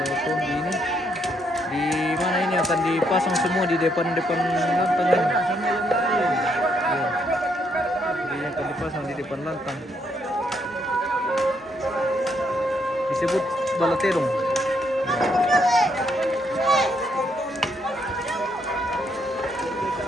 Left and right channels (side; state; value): both; normal; correlation 0.74